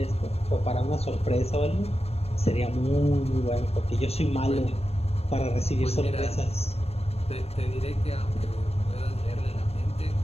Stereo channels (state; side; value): late; right; 0.30 ms